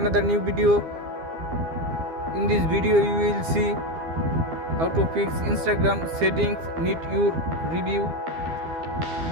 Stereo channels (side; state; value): left; late; 12 ms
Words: new video. In this video you will see how to fix Instagram settings need your review.